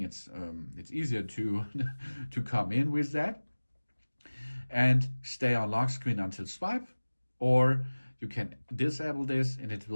it's easier to to come in with that. And stay on lock screen until swipe, or you can disable this and it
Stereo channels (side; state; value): both; inverted; correlation -1.00